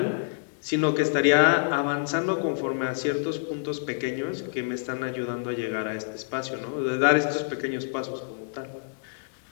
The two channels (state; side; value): silent; right; digital silence